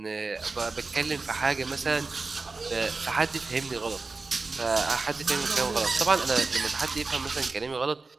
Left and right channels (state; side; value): quieter; left; 3.9 dB